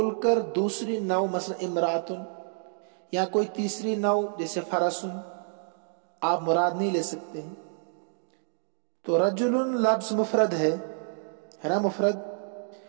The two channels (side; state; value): left; silent; digital silence